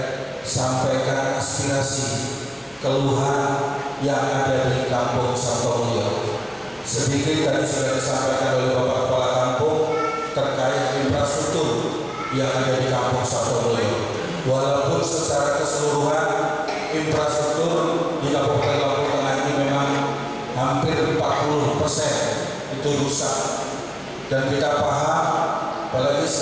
sampaikan aspirasi keluhan yang ada di Kampung Sabtomulyo. Sedikit tadi sudah disampaikan oleh Bapak Kepala Kampung terkait infrastruktur yang ada di Kampung Sabtomulyo. Walaupun secara keseluruhan infrastruktur di Kabupaten Lampung Tengah ini memang hampir 40% itu rusak, dan kita paham, apalagi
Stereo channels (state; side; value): identical; both; correlation 1.00